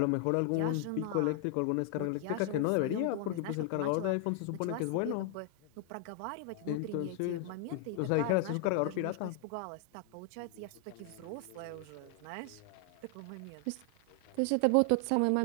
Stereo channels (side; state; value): both; different; correlation 0.00